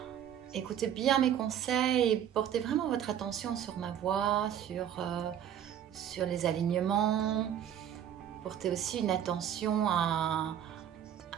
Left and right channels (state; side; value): quieter; left; 9.9 dB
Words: écoutez bien mes conseils et portez vraiment votre attention sur ma voix, sur les alignements. Portez aussi une attention à